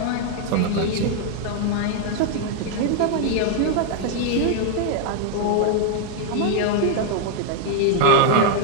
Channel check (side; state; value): both; different; correlation 0.00